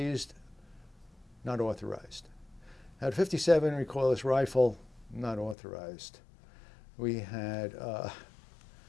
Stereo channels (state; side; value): drops out; right; at 5.6 s